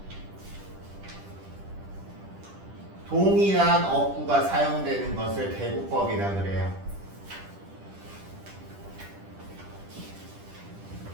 동일한 어구가 사용되는 것을 대구법이라 그래요.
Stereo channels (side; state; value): left; late; 10 ms